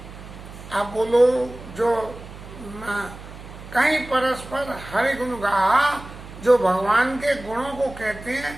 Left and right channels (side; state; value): right; noise; hum, 15 dB below the sound